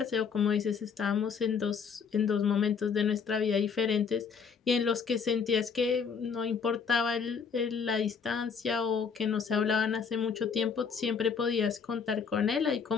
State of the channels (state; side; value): quieter; right; 6.0 dB